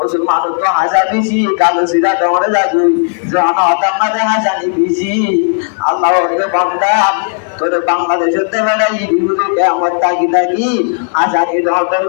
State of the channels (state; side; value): silent; right; 59 dB below the other